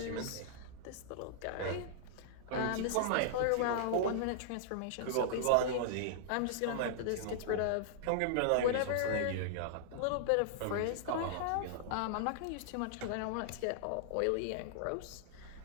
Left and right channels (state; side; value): different; both; correlation -0.01